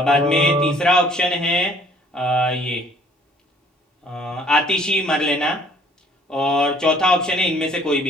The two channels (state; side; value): normal; both; correlation 0.58